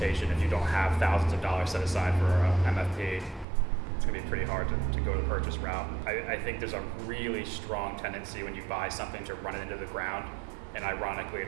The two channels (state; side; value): drops out; left; at 3.5 s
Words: If you don't have thousands of dollars set aside for a MFP, it's going to be pretty hard to go the purchase route. I think there's a really strong tendency when you buy something to run it into the ground, and ironically